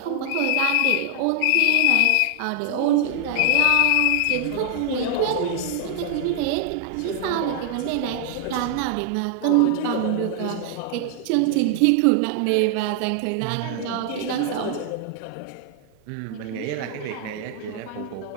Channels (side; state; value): both; different; correlation 0.00